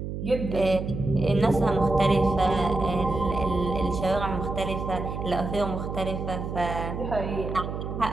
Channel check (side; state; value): right; noise; hum, 5 dB below the sound